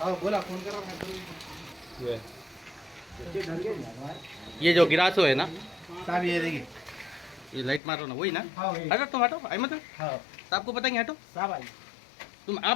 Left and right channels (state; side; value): drops out; right; at 7.8 s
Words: बोला फोन कर रहा मैं। ये जो गिरासो है ना साहब ये देखिए ये लाइट मारो ना वही ना। हाँ हटो तुम हटो अहमद हाँ साहब को बताएंगे हटो साहब आई तुम